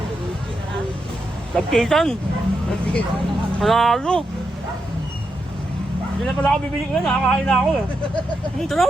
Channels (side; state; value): both; normal; correlation 0.84